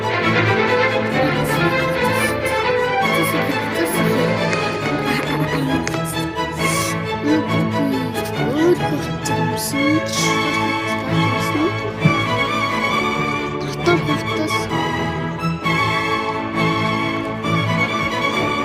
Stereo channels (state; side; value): identical; both; correlation 1.00